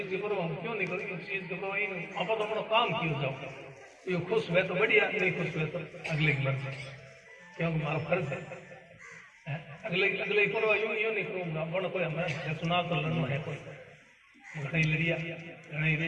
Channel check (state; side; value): identical; both; correlation 1.00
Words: के करो हम क्यों नहीं करो, इस चीज के करो आप तो अपना काम क्यों जाओ, ये खुश हुए तो बढ़िया, नहीं खुश हुए तो अगले की मर्जी, क्योंकि हमारा फर्ज है अगले करो यूं नहीं करूँगा बड़ा कोई हमारा चुनाव तो लड़ना है कोई घड़ी लड़िया